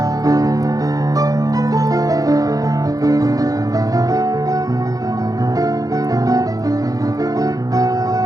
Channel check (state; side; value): late; left; 0.17 ms